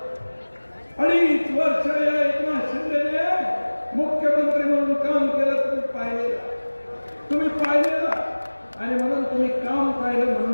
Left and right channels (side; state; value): both; inverted; correlation -1.00